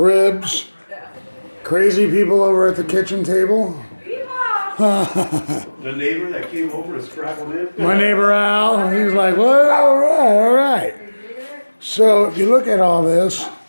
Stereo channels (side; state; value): both; inverted; correlation -1.00